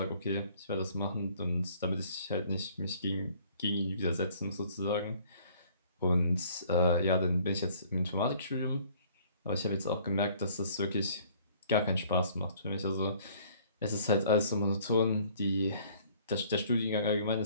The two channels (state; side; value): inverted; both; correlation -0.57